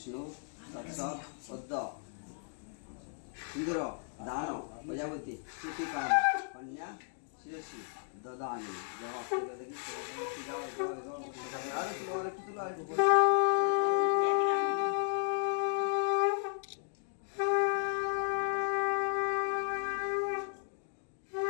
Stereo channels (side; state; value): right; silent; digital silence